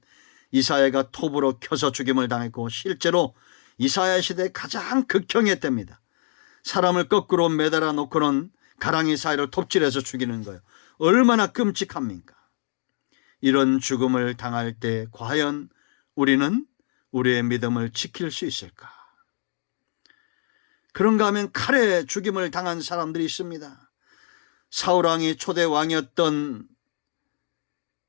이사야가 톱으로 켜서 죽임을 당했고, 실제로 이사야 시대의 가장 극형의 때입니다. 사람을 거꾸로 매달아 놓고는 가랑이 사이를 톱질해서 죽이는 거예요. 얼마나 끔찍합니까? 이런 죽음을 당할 때 과연 우리는 우리의 믿음을 지킬 수 있을까? 그런가 하면 칼에 죽임을 당한 사람들이 있습니다. 사울왕이 초대 왕이었던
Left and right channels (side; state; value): right; silent; 62 dB below the other